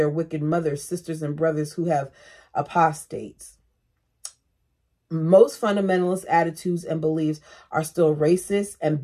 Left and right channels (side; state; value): both; identical; correlation 1.00